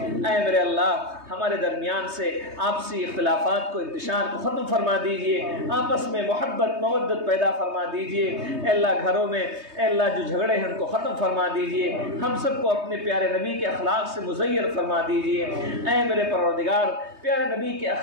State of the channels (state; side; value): late; left; 3.2 ms